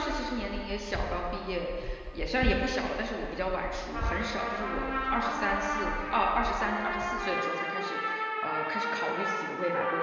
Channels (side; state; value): both; identical; correlation 1.00